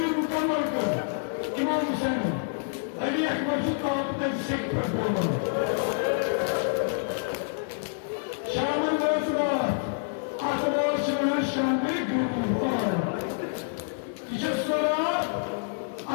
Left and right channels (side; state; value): right; silent; 60 dB below the other